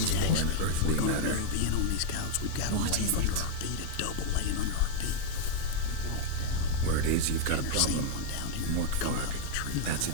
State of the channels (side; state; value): both; different; correlation 0.00